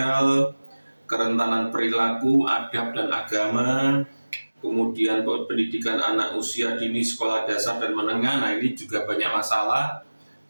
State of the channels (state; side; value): inverted; both; correlation -1.00